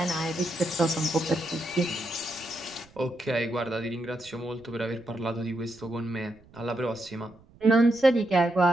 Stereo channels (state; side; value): noise; right; rumble, 26 dB below the sound